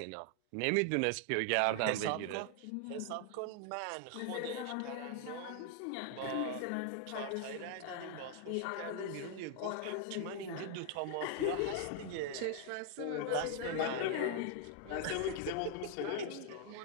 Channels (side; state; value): both; different; correlation 0.00